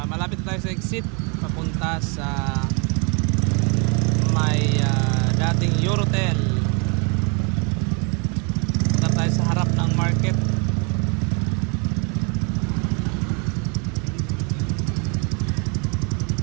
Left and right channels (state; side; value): quieter; left; 34.0 dB